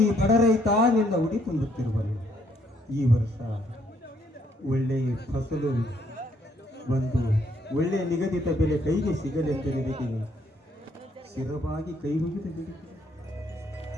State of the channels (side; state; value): both; normal; correlation 0.69